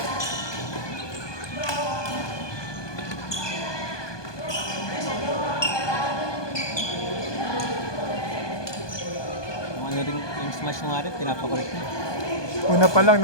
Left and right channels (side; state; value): right; late; 1.2 ms